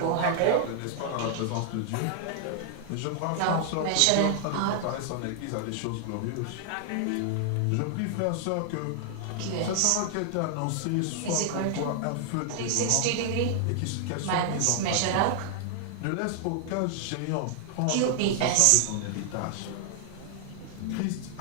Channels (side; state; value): both; different; correlation 0.00